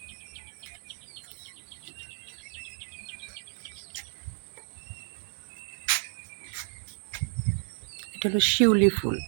এটা হলো শিউলি ফুল,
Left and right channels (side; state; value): left; silent; digital silence